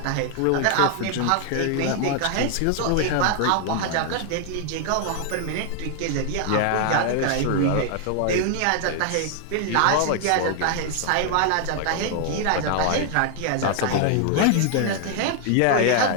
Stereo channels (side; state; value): both; different; correlation 0.00